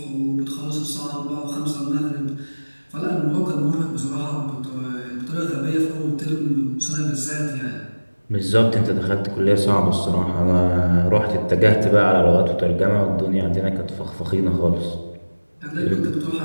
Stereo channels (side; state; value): both; inverted; correlation -1.00